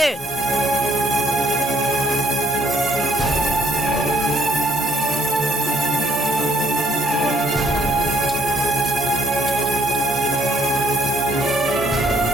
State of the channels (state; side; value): normal; both; correlation 0.66